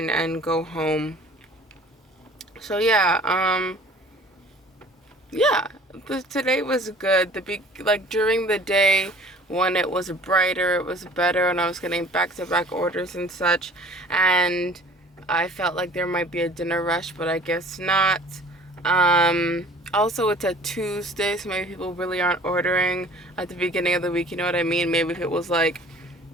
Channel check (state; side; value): normal; both; correlation 0.48